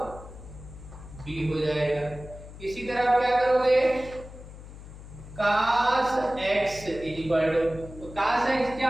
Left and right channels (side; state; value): left; noise; hum, 15 dB below the sound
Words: B हो जाएगा। इसी तरह आप क्या करोगे cos x तो cos x क्या